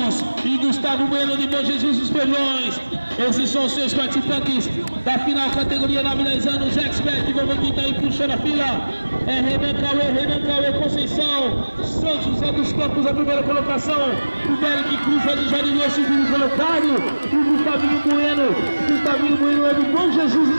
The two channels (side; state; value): both; inverted; correlation -1.00